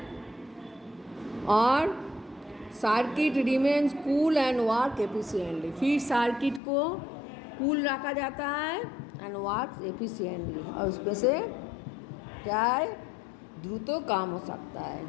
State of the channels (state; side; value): drops out; right; at 6.6 s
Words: और circuit remains cool and work efficiently. फिर सर्किट को कूल रखा जाता है एंड वर्क एफिशिएंटली, और उसमें से क्या है, द्रुत काम हो सकता